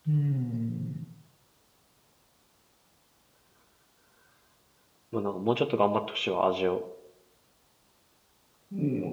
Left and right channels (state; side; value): identical; both; correlation 1.00